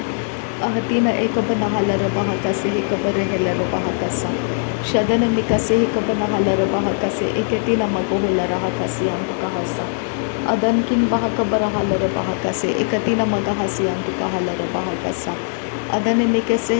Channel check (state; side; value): silent; right; digital silence